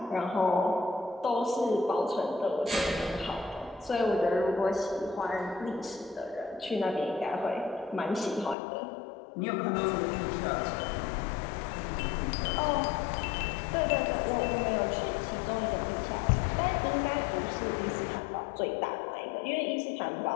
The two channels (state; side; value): drops out; right; at 8.6 s